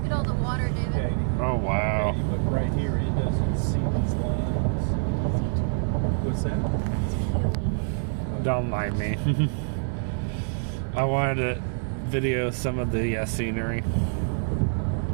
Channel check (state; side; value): silent; left; digital silence